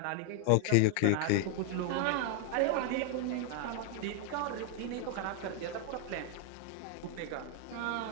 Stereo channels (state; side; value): different; both; correlation 0.00